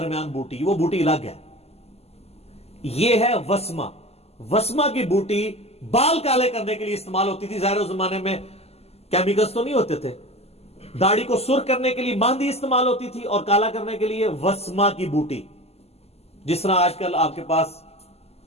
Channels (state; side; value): late; right; 0.29 ms